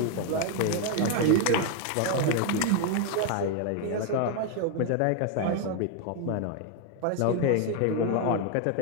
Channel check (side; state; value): both; different; correlation 0.01